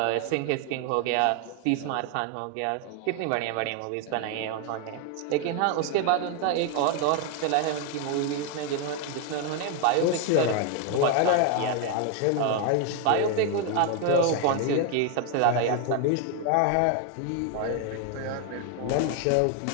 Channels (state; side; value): different; both; correlation 0.01